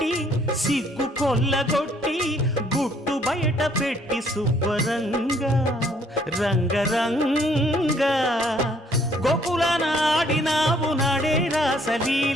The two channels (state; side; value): normal; both; correlation 0.64